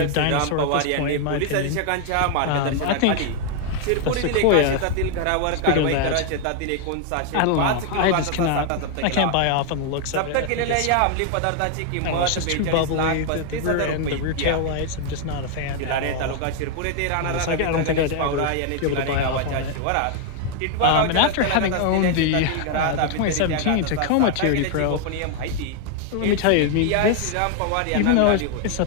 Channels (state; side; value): different; both; correlation 0.00